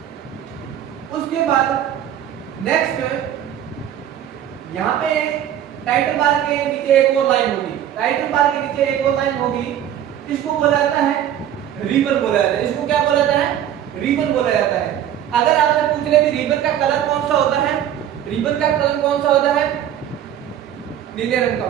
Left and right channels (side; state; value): left; quieter; 10.7 dB